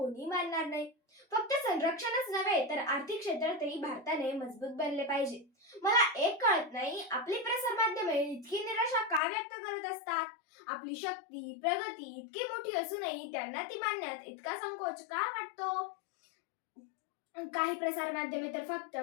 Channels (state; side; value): drops out; right; at 9.2 s